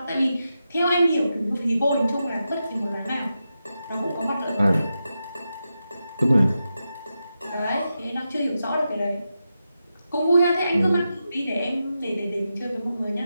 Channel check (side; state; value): both; inverted; correlation -0.89